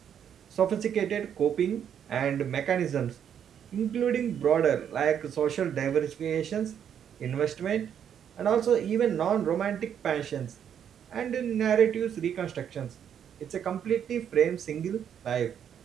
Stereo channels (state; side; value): quieter; left; 8.8 dB